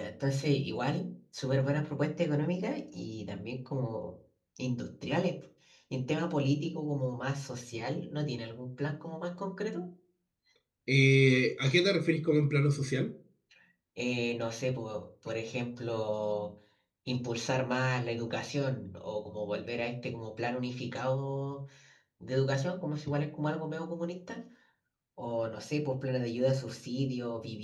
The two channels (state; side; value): identical; both; correlation 1.00